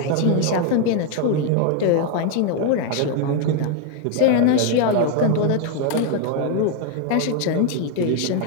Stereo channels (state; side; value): different; both; correlation 0.01